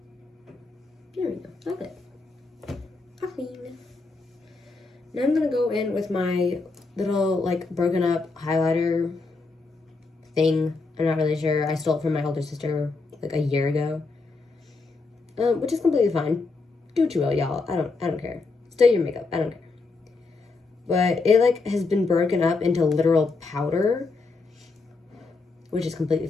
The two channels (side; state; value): right; quieter; 3.9 dB